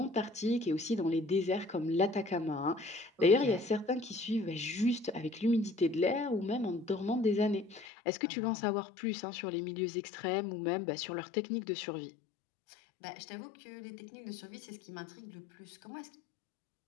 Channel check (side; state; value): right; drops out; at 7.9 s